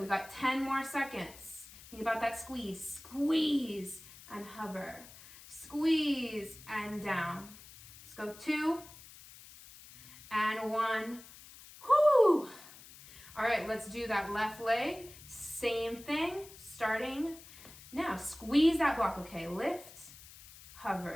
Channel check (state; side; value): noise; left; hiss, 19 dB below the sound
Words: we got 10 more seconds. Think about that squeeze. Squeeze and hover. Squeeze and down. Let's go 2 and 1. Whoo! All right, let's do that left leg. Same thing, starting now. Squeeze that block, okay? Lift,